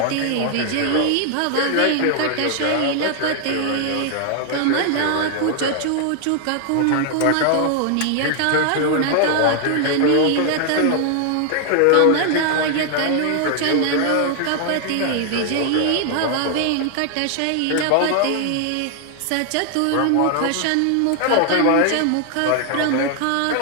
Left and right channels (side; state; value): both; different; correlation 0.00